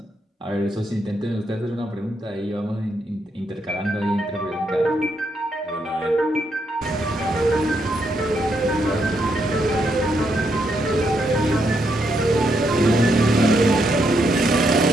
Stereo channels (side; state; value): both; normal; correlation 0.78